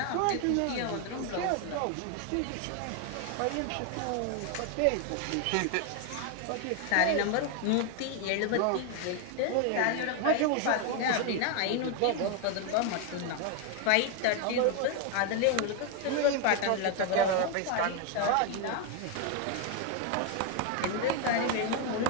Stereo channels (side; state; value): both; different; correlation 0.01